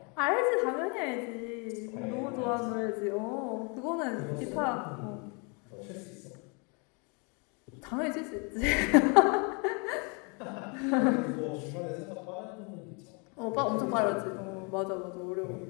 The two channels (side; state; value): right; quieter; 33.6 dB